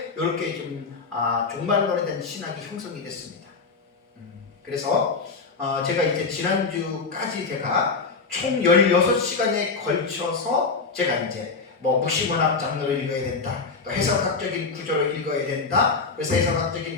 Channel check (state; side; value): quieter; right; 4.5 dB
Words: 이렇게 좀 종말론에 대한 신학이 형성이 됐습니다. 그래서 제가 이제 지난주까지 제가 총 16시간에 걸쳐서 제가 이제 묵시문학 장르를 읽어야 된다. 또 해석학적인 구조를 읽어야 된다. 그래서